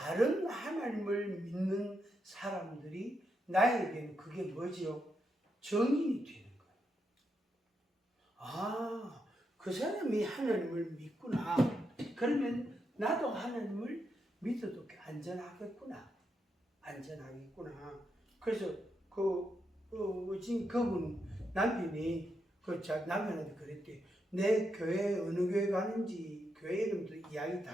하나님을 믿는 사람들이 나에게는 그게 뭐지요? 정인이 되는 거예요. 아, 그 사람이 하나님을 믿구나. 그러면 나도 하나님을 믿어도 안전하겠구나. 그래서 지금 그분 남편이 남편한테 그랬대. 내 교회 어느 교회 가는지 교회 이름도 이야기 다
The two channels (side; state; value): both; normal; correlation 0.83